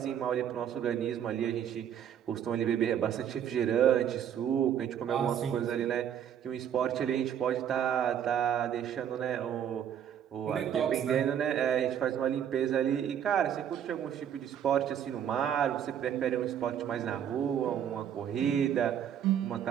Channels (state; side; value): quieter; left; 9.3 dB